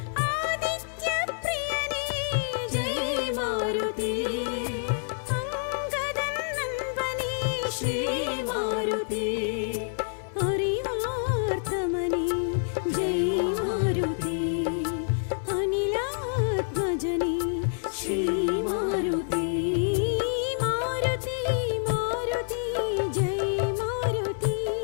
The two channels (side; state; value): right; silent; 59 dB below the other